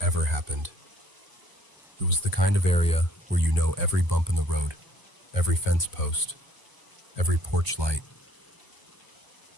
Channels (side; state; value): right; late; 1.0 ms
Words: happened. It was the kind of area where you know every bump in the road, every fence post, every porch light.